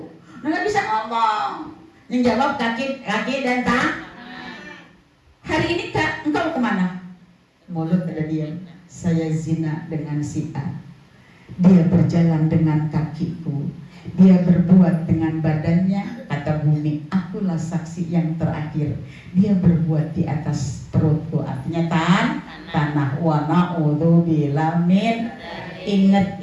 nggak bisa ngomong. Yang jawab kaki dan tangan. Hari ini Kak, engkau kemana? Mulut ada diam. Saya zina dengan si A. Dia berjalan dengan kakiku. Dia berbuat dengan badannya. Kata bumi, akulah saksi yang terakhir. Dia berbuat di atas perutku. Artinya tanah. Wa na'udzubillah min. Ingat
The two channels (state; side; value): identical; both; correlation 1.00